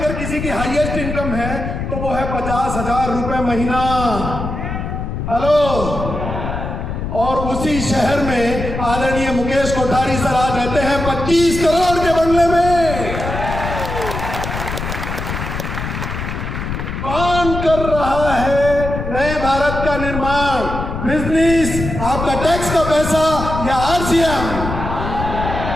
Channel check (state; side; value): noise; left; rumble, 5 dB below the sound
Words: किसी की हाईएस्ट इनकम है तो वो है 50,000 रुपए महीना। हेलो। और उसी शहर में आदरणीय मुकेश कोठारी सर आज रहते हैं 25 करोड़ के बंगले में। कौन कर रहा है नए भारत का निर्माण? बिजनेस, आपका टैक्स का पैसा या आरसीएम?